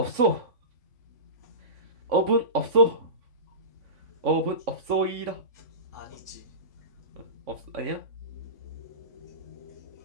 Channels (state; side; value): late; left; 3.5 ms